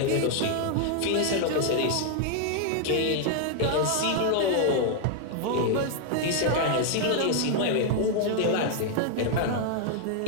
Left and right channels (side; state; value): both; different; correlation 0.00